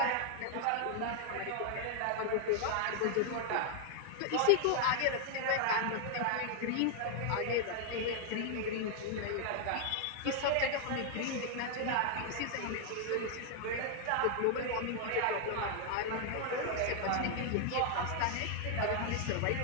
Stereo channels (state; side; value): different; both; correlation 0.00